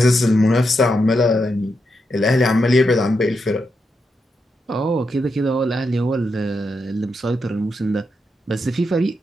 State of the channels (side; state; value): both; normal; correlation 0.84